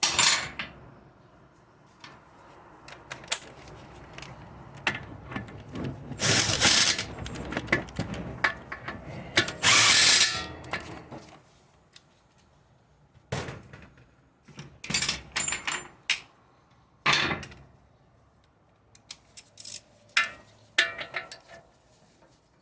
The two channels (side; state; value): both; identical; correlation 1.00